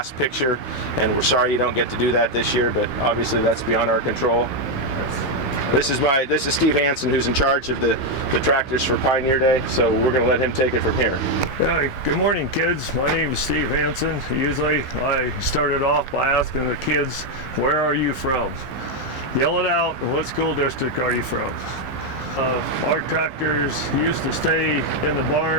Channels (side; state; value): right; late; 15 ms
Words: picture. And we're sorry you don't get to do that this year, but obviously that's beyond our control. This is Steve Hanson, who's in charge of the tractors for Pioneer Day, so we're going to let him take it from here. Hi, good morning, kids. My name is Steve Hanson. Usually I started off by asking the kids, where are you from? Yell it out, what school district are you from? Our tractors used to stay in the